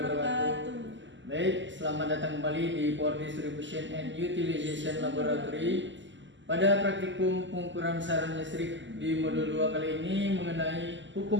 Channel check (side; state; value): left; late; 0.54 ms